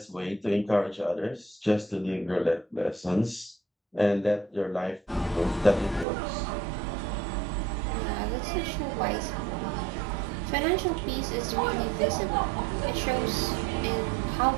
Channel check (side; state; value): left; drops out; at 6.1 s